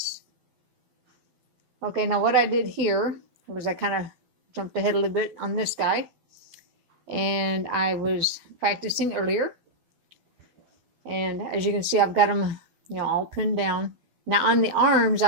Okay, now what I did here was I kind of jumped ahead a little bit on this guy. And I was practicing earlier. And as you can see, I've got them, you know, all pinned down. Now on the arms,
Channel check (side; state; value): left; late; 12 ms